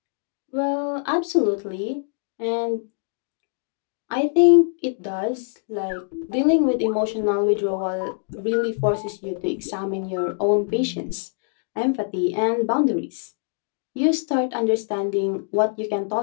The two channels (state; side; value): silent; right; digital silence